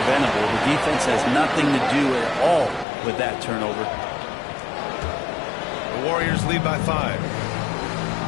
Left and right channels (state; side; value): drops out; right; at 2.9 s